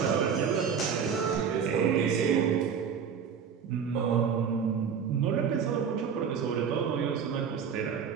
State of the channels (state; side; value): quieter; left; 7.0 dB